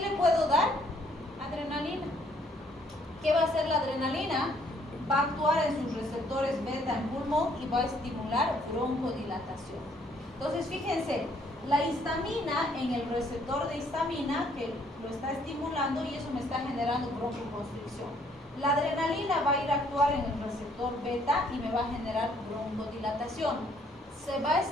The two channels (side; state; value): both; normal; correlation 0.65